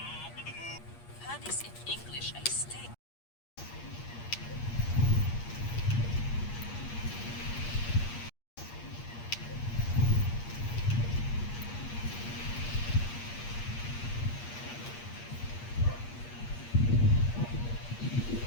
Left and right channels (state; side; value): late; right; 8.5 ms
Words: Honey's in English, I stay.